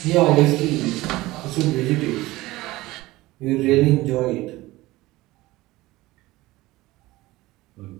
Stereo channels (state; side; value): quieter; left; 18.9 dB